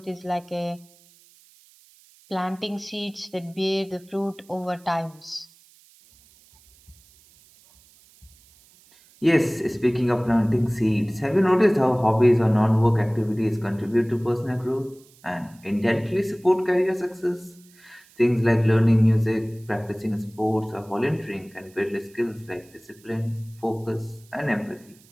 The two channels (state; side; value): noise; right; hiss, 28 dB below the sound